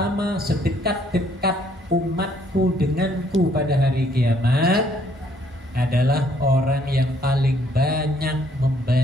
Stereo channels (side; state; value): both; normal; correlation 0.66